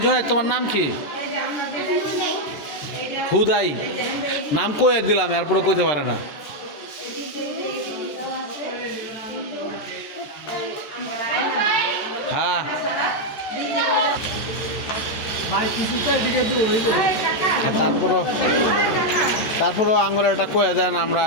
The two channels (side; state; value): right; late; 13 ms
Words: জুনায়েদ তোমার নাম কি? হুদাই নাম কয়ে দিলাম, এরপরে কইতে পারে না। হ্যাঁ তারপরও আঙ্গুর একটা কয়ে দেন, আমরা